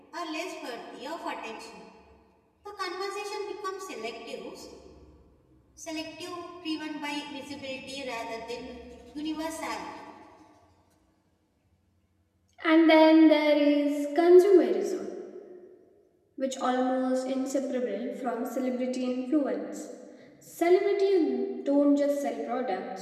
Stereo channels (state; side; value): identical; both; correlation 1.00